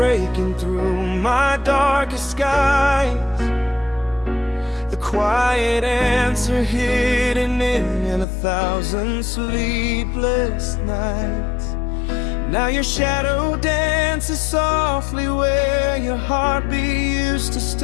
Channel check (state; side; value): drops out; right; at 8.2 s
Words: through my darkest skies, the quiet answer hidden in 1,000 sleepless nights. Now your shadow dances softly where your heartbeat used to